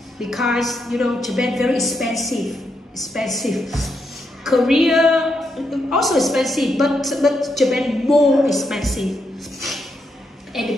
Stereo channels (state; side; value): normal; both; correlation 0.81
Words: because, you know, Japan very expensive. Korea also expensive, but Japan more expensive. And